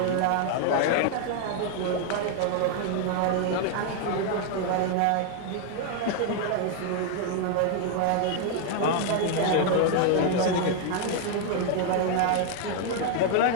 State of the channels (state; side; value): different; both; correlation 0.00